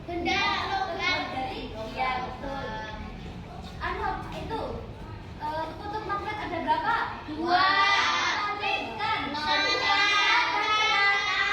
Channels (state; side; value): identical; both; correlation 1.00